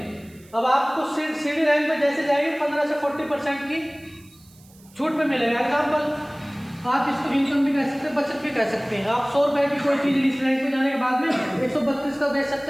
अब आपको सीडी रैंक पे जैसे जाएंगे 15 से 40% की छूट पे मिलेगा। एग्जाम्पल, आप इसको इनकम भी कह सकते हैं, बचत भी कह सकते हैं। आप 100 रुपए की कोई चीज़ इस रैंक पे जाने के बाद में 132 का बेच सकते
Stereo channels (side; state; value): right; noise; hiss, 27 dB below the sound